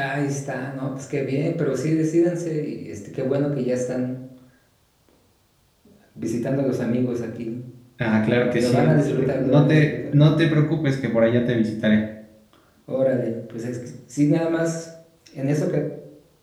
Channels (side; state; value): both; identical; correlation 1.00